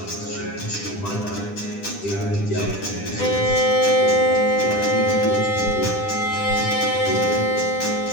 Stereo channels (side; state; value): right; late; 10 ms